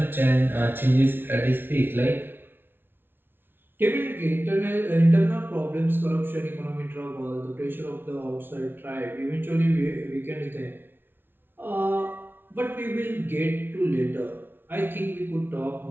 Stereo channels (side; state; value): left; late; 0.10 ms